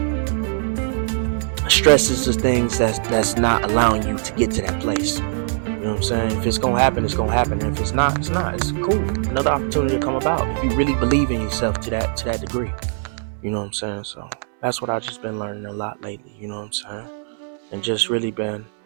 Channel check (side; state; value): left; silent; 65 dB below the other